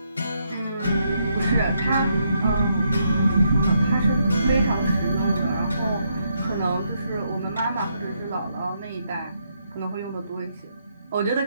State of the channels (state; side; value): inverted; both; correlation -0.77